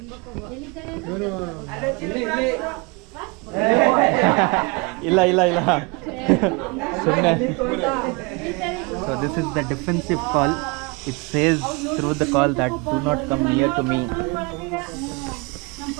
ಇಲ್ಲ ಸುಮ್ಮನೆ. So this is the defensive call. It says through the call that do not come near to me.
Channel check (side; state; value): left; quieter; 29.0 dB